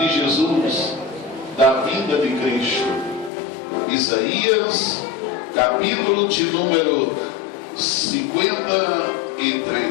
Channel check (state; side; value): drops out; right; at 3.3 s